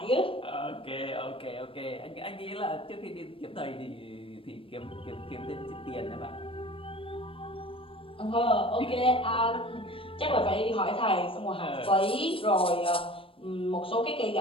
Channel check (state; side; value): late; right; 0.26 ms